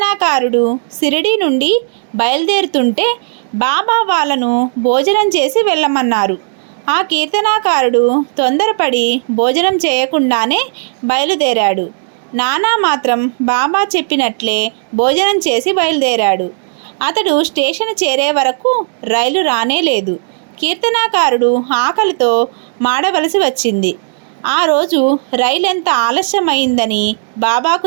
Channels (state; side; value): silent; left; digital silence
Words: షిరిడీ నుండి బయలుదేరుతుంటే బాబా వాళ్ళను భోజనం చేసి వెళ్ళమన్నారు. ఆ కీర్తనాకారుడు తొందరపడి భోజనం చేయకుండానే బయలుదేరాడు. నానా మాత్రం బాబా చెప్పినట్లే భోజనం చేసి బయలుదేరాడు. అతడు స్టేషన్ చేరే వరకు రైలు రానే లేదు. కీర్తనాకారుడు ఆకలితో మాడవలసి వచ్చింది. ఆ రోజు రైలు ఎంత ఆలస్యమైందని బాబాకు